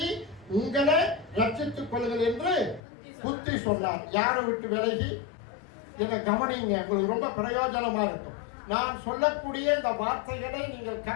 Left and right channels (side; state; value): right; drops out; at 2.8 s